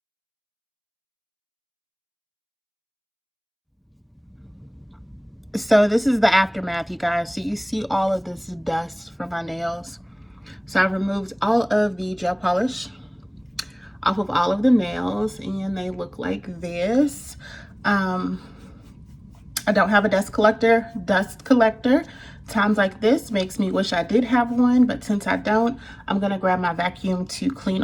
So this is the aftermath, you guys. So you see all of this dust from my nails. So I've removed all of the gel polish off of all of the nails, and they look like this. I don't have a dust collector. Times like this makes me wish I did have one, but since I don't, I'm gonna grab my vacuum to clean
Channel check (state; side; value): identical; both; correlation 1.00